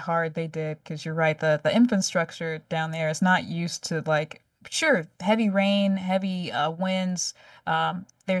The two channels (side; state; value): both; identical; correlation 1.00